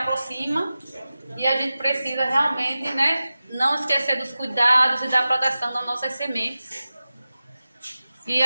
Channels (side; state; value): both; inverted; correlation -0.95